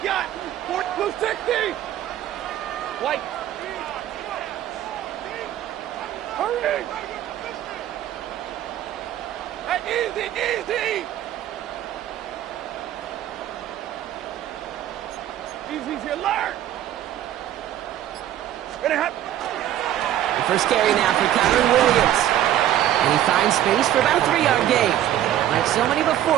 got. 40 blue 60. White. Hurry. Hey, easy. Easy, alert! Gonna happen. The first carry now for Kyron Williams. And he finds space for about a 3-yard gain. Like so many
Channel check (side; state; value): left; quieter; 12.1 dB